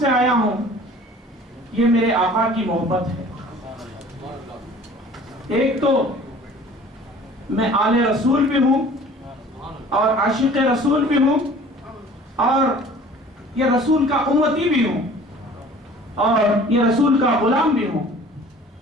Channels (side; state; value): both; normal; correlation 0.48